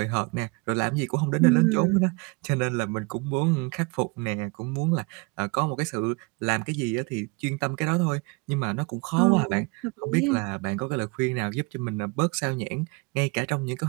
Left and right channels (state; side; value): quieter; left; 28.5 dB